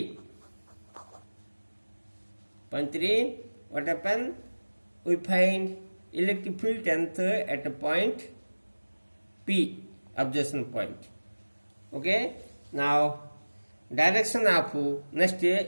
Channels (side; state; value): both; inverted; correlation -1.00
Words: Point 3, what happened? We find electric field length at a point P, observation point. Okay, now direction of next